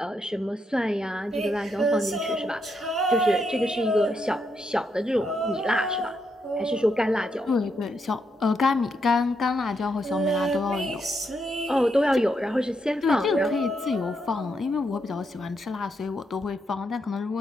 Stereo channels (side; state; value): both; normal; correlation 0.80